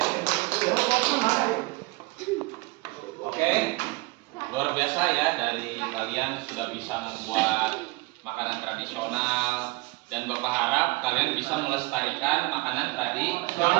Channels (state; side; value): quieter; left; 24.2 dB